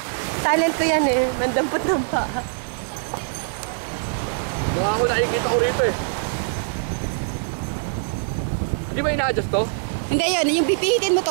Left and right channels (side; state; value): left; silent; digital silence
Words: Talent ko yan eh. Mandampot ng paa. Mukha ko nakikita ko rito eh. Hindi ba ina-adjust to? Hindi yun, yung pipihitin mo